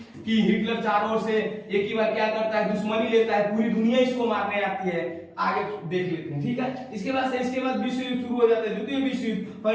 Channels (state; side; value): identical; both; correlation 1.00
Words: कि हिटलर चारों ओर से एक ही बार क्या करता है, दुश्मनी लेता है, पूरी दुनिया इसको मारने आती है। आगे देख लेते हैं, ठीक है। इसके बाद विश्व युद्ध शुरू हो जाता है, द्वितीय विश्व युद्ध।